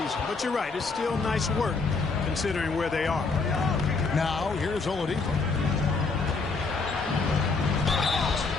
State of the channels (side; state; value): right; quieter; 4.3 dB